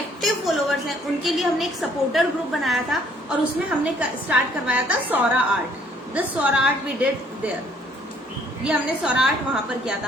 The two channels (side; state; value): both; normal; correlation 0.62